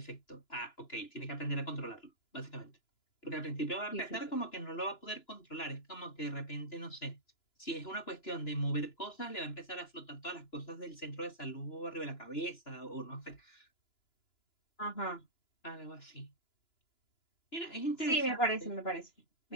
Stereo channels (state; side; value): late; right; 2.9 ms